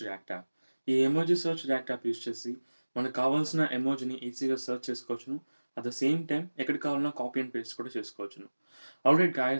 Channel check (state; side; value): inverted; both; correlation -1.00